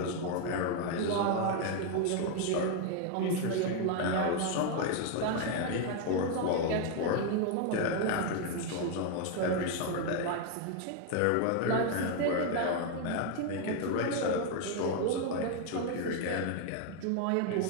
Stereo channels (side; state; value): both; different; correlation 0.01